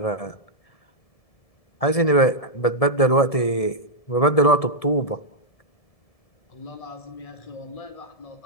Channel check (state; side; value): late; right; 1.7 ms